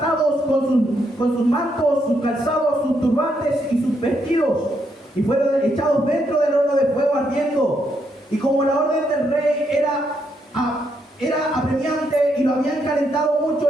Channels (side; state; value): both; normal; correlation 0.77